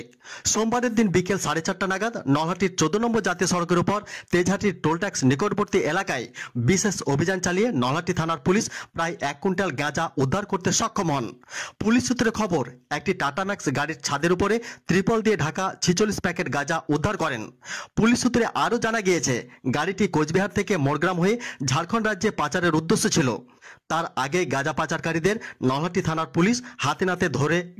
সোমবারের দিন বিকেল 4:30 নাগাদ নলহাটির 14 নম্বর জাতীয় সড়কের উপর তেজহাটির টোল ট্যাক্স নিকটবর্তী এলাকায় বিশেষ অভিযান চালিয়ে নলহাটি থানার পুলিশ প্রায় 1 কুইন্টাল গাঁজা উদ্ধার করতে সক্ষম হন। পুলিশ সূত্রে খবর, একটি টাটা ম্যাক্স গাড়ির ছাদের উপরে ত্রিপল দিয়ে ঢাকা 46 প্যাকেট গাঁজা উদ্ধার করেন। পুলিশ সূত্রে আরও জানা গিয়েছে, গাড়িটি কোচবিহার থেকে মোরগ্রাম হয়ে ঝাড়খণ্ড রাজ্যে পাচারের উদ্দেশ্য ছিল। তার আগে গাঁজা পাচারকারীদের নলহাটি থানার পুলিশ হাতে নাতে ধরে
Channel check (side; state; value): both; identical; correlation 1.00